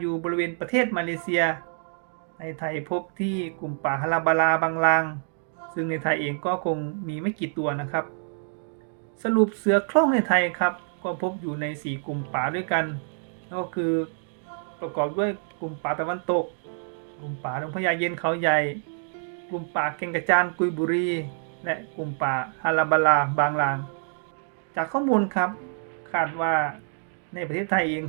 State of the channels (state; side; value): silent; left; 60 dB below the other